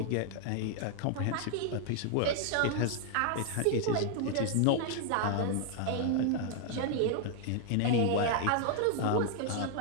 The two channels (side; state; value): both; different; correlation 0.00